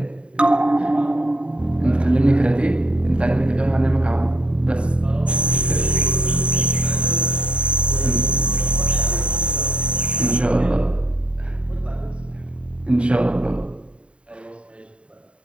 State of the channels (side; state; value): left; late; 0.058 ms